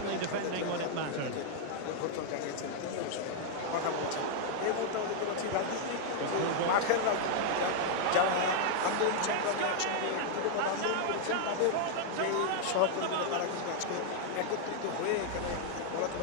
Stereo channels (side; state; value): both; different; correlation -0.01